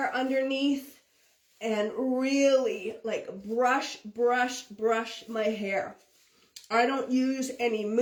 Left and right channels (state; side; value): identical; both; correlation 1.00